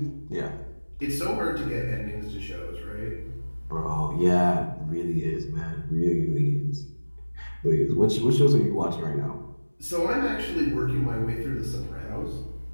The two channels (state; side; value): inverted; both; correlation -1.00